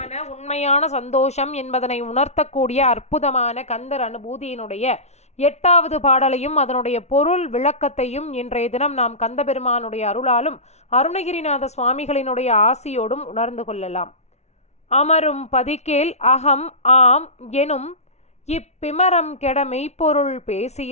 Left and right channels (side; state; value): right; late; 0.32 ms